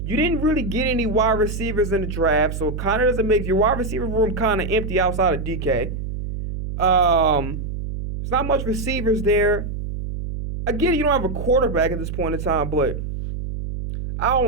You didn't really get any wide receivers in the draft, so it kind of doesn't make your wide receiver room kind of empty outside of DK. There's not much receivers there. Again, you don't have a quarterback at this point in time, but I don't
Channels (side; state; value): right; noise; hum, 6 dB below the sound